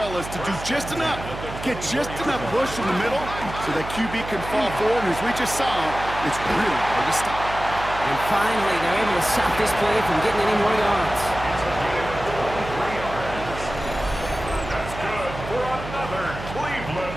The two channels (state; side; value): noise; right; hum, 10 dB below the sound